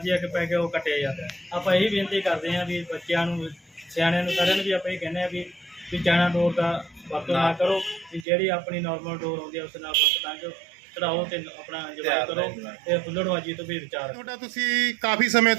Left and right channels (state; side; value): drops out; left; at 8.2 s